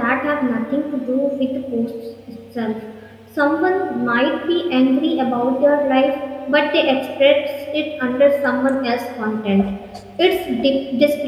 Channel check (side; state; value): both; identical; correlation 1.00